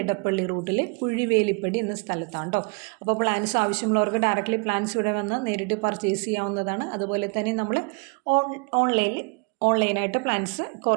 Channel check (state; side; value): quieter; left; 33.2 dB